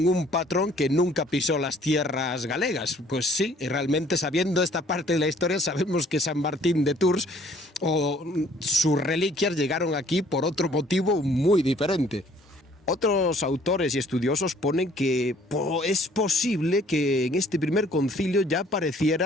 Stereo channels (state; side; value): normal; both; correlation 0.58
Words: un patrón que nunca pisó las tierras galegas. Pues sí, y realmente, sabiendo esta parte de la historia, sabemos que San Martín de Tours o sus reliquias llegaron aquí por otro motivo muy diferente. Otros autores y estudiosos ponen que es posible que en este primer concilio ya